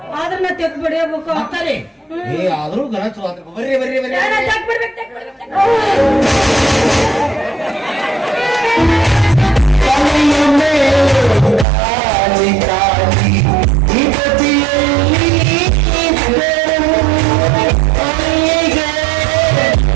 ಆದ್ರ ನಾ ತೆಕ್ ಬಡಿಯಬೇಕು ಅಂತಾರೆ ಏ ಆದ್ರೂ ಗಣ ಚಲೋ ಆದ್ರೆ ಬರ್ರಿ ಬರ್ರಿ ಬರ್ರಿ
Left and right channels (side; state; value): left; drops out; at 11.7 s